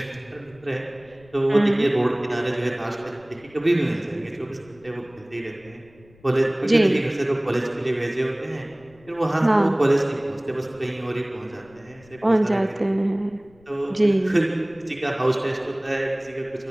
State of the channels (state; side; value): noise; left; rumble, 27 dB below the sound